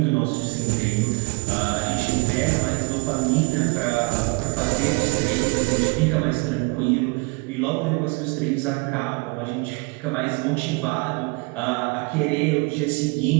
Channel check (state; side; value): quieter; left; 29.2 dB